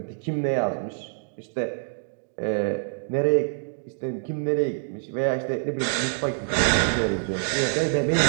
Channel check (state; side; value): silent; left; digital silence